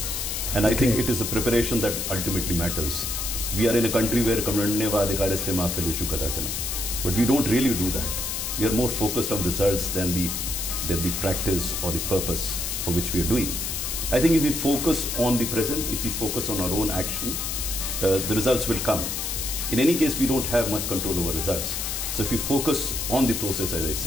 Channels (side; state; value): left; noise; hiss, 3 dB below the sound